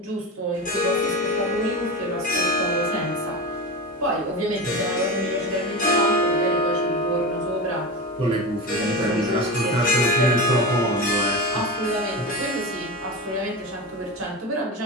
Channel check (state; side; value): normal; both; correlation 0.24